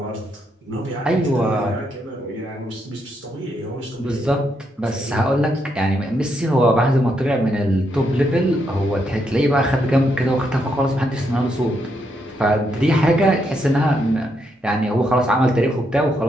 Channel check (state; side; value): normal; both; correlation 0.78